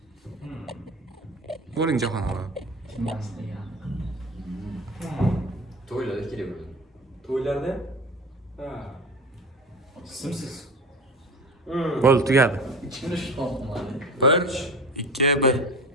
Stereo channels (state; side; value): normal; both; correlation 0.32